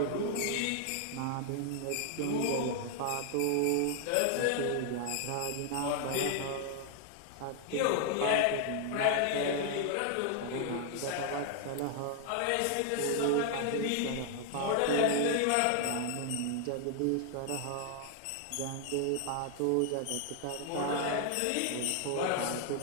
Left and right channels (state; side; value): different; both; correlation 0.00